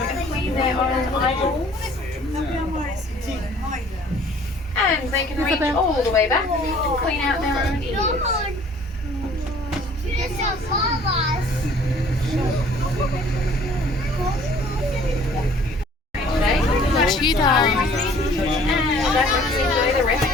clean their own eyeballs. And they can reach all the way back and clean out their own ears. The cheetah And that lets you enjoy the rest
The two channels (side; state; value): both; normal; correlation 0.54